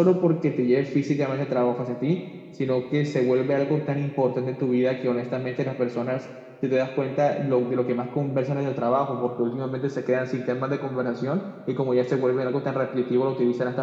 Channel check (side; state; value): both; identical; correlation 1.00